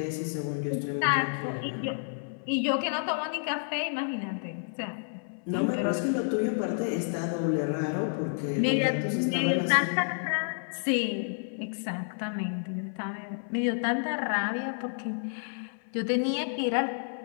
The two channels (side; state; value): right; silent; 58 dB below the other